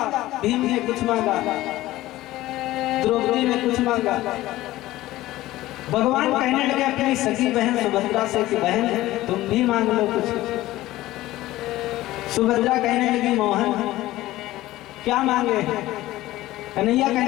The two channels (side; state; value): right; quieter; 16.4 dB